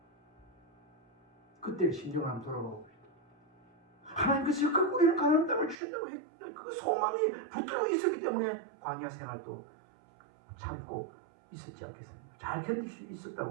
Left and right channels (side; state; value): left; drops out; at 5.8 s